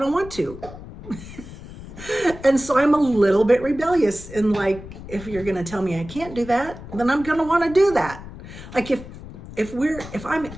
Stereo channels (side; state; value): left; noise; rumble, 14 dB below the sound